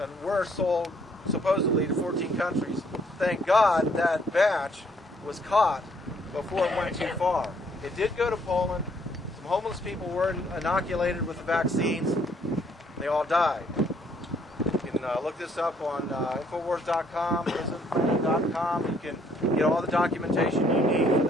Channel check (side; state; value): both; normal; correlation 0.66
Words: were sold supposedly to 14 countries. Thank God that batch was caught before it went too far. It did go to Poland. Some homeless people were inoculated with the vaccines. They all died. You can look this up on Infowars.com, PrisonPlanet.com. You can get all the documentation you need for